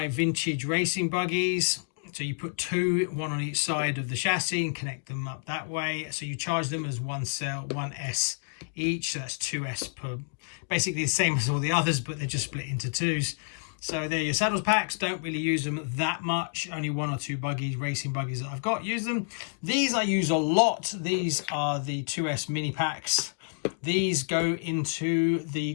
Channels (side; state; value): right; silent; digital silence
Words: vintage racing buggies. So you put two, one on each side of the chassis and connect them up that way. So you charge them as one cell, 1S each, so that's 2S per, basically the same as all the others, but they're just split into twos. So they're your saddles packs. Don't really use them that much. Only one or two buggies, racing buggies that I've got, use them. These I use a lot. These are the 2S mini packs. These go into the